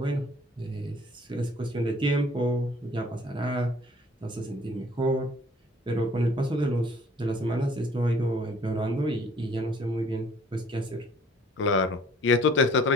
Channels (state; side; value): normal; both; correlation 0.56